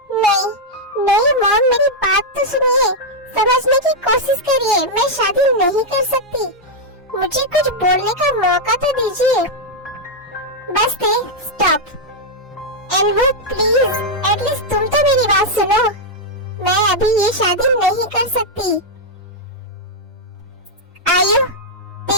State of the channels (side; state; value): both; normal; correlation -0.02